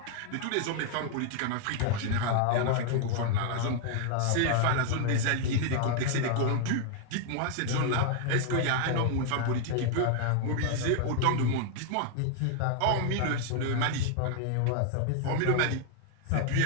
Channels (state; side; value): different; both; correlation 0.00